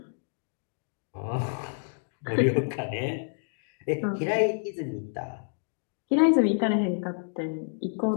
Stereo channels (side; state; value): right; silent; digital silence